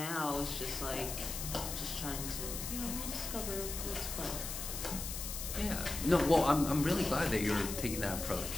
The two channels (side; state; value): left; noise; hiss, 6 dB below the sound